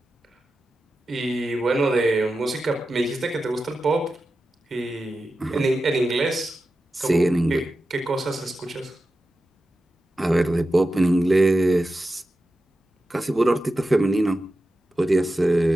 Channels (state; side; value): normal; both; correlation 0.92